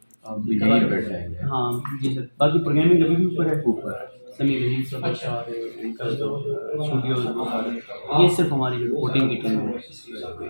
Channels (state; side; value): inverted; both; correlation -1.00